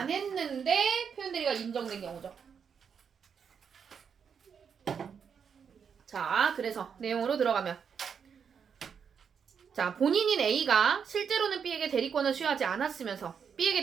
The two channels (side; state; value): left; quieter; 6.9 dB